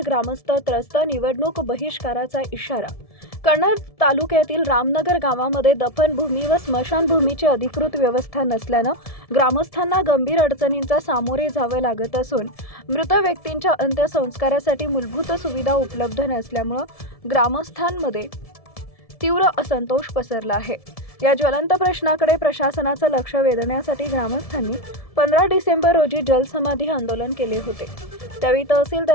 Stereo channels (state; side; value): late; right; 1.7 ms